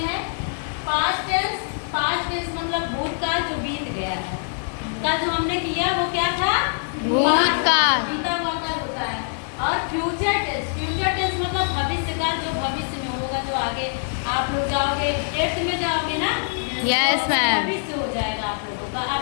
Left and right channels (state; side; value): silent; right; digital silence